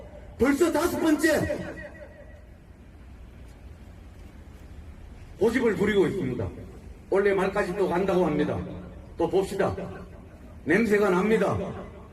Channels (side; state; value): both; identical; correlation 1.00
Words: 벌써 5번째 고집을 부리고 있습니다. 올해 말까지 또 간다고 합니다. 또 봅시다. 냄새가 납니다.